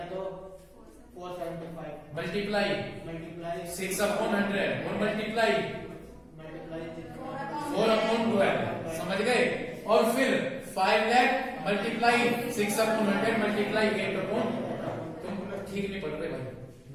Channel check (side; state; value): both; identical; correlation 1.00